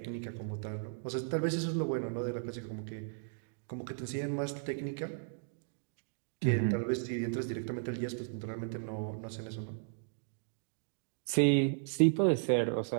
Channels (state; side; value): silent; left; digital silence